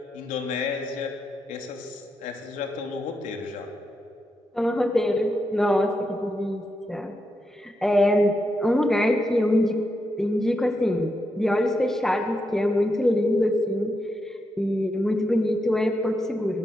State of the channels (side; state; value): both; normal; correlation 0.84